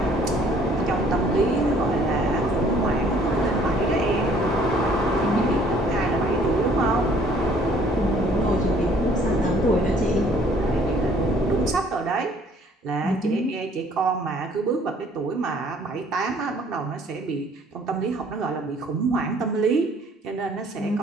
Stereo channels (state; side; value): normal; both; correlation 0.59